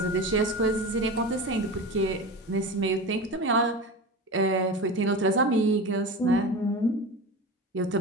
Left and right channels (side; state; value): both; normal; correlation 0.28